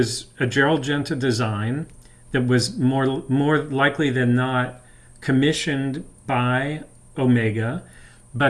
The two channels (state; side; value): identical; both; correlation 1.00